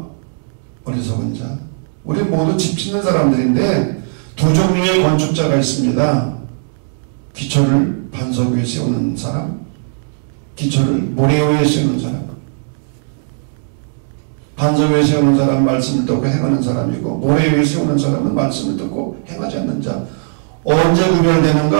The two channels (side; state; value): left; silent; 68 dB below the other